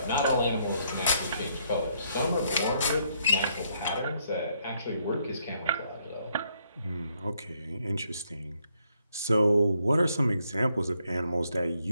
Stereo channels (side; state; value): both; inverted; correlation -0.72